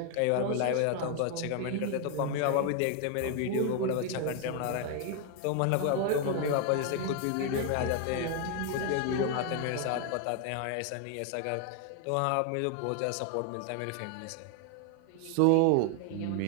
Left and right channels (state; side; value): different; both; correlation 0.01